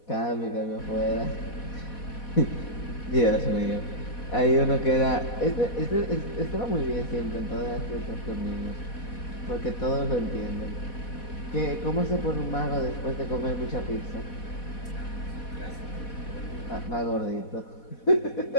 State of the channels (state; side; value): late; right; 4.1 ms